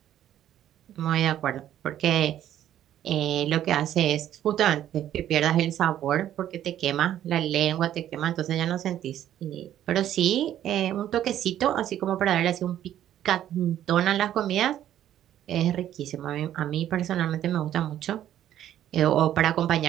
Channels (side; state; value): left; quieter; 11.5 dB